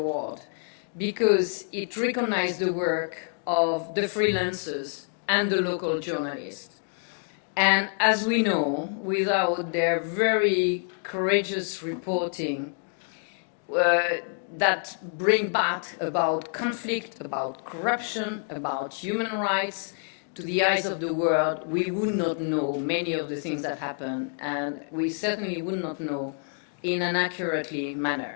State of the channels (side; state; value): right; silent; 60 dB below the other